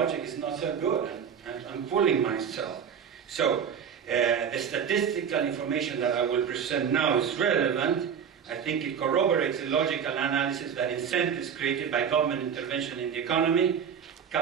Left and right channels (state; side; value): quieter; left; 7.6 dB